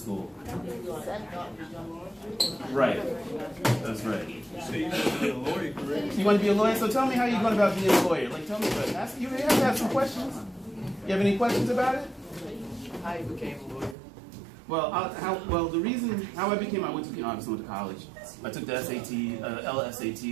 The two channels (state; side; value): drops out; left; at 14.0 s